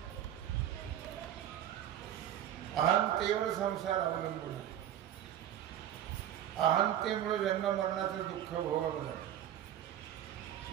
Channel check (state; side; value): quieter; left; 11.2 dB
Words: अहंतेवर संसार अवलंबून आहे. अहंतेमुळे जन्म मरणाचं दुःख भोगावं लागतं.